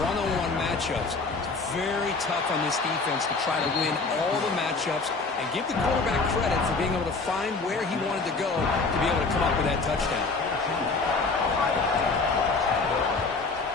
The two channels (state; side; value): quieter; right; 4.0 dB